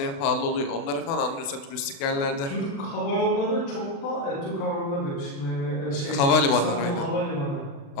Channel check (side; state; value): right; late; 36 ms